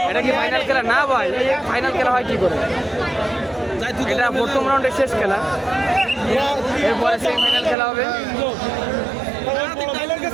এটা কি ফাইনাল খেলা? না ভাই, ফাইনাল খেলা হয় কি করে? এটা প্রথম রাউন্ডের শেষ খেলা, এরপরে সেমিফাইনাল খেলা হবে।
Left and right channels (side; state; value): left; drops out; at 7.8 s